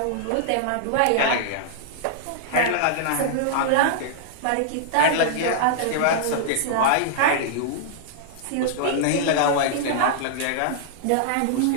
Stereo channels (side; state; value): both; different; correlation -0.01